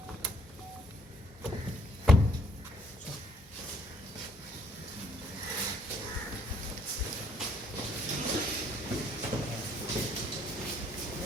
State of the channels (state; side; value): normal; both; correlation 0.65